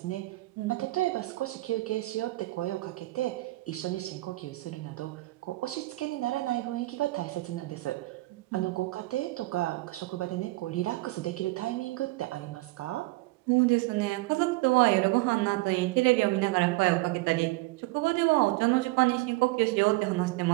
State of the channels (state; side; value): quieter; left; 20.7 dB